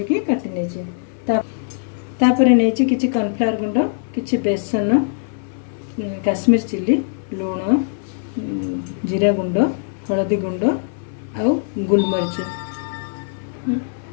काटी नेइची। तापरे नेइची किछि कॉर्नफ्लावर गुंड, किछि बेसन, काश्मीर चिली, लूण, जीरा गुंड, हळदी गुंड आउ गोलमरीच।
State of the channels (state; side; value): silent; right; 59 dB below the other